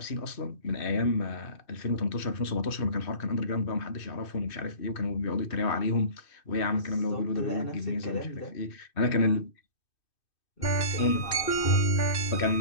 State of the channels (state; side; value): late; right; 2.6 ms